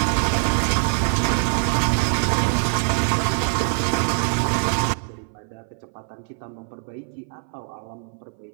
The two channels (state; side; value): silent; left; 59 dB below the other